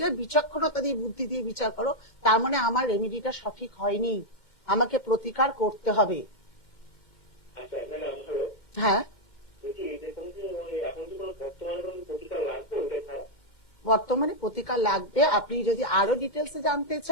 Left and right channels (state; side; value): late; right; 2.1 ms